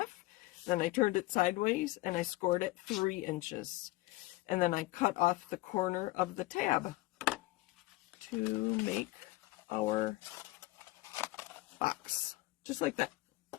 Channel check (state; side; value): quieter; right; 19.8 dB